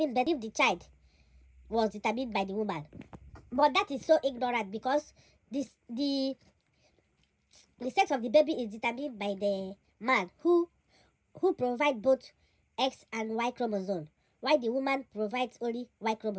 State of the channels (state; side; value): identical; both; correlation 1.00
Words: birth if the child was determined by the woman. But that is so ignorant, because the sex of the baby is determined by the man who provide both X and Y chromosome, while the woman provides only Y